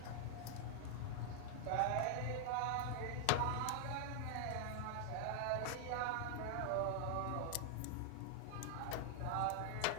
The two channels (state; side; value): different; both; correlation -0.01